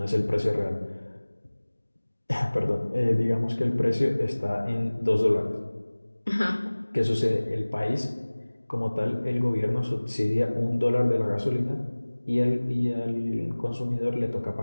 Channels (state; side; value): inverted; both; correlation -1.00